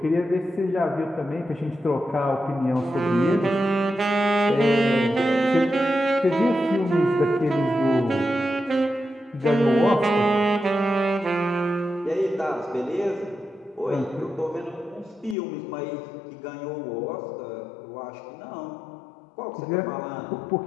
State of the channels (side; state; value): right; drops out; at 15.4 s